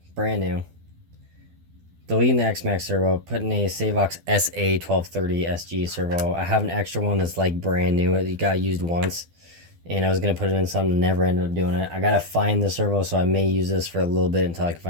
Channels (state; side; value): late; left; 12 ms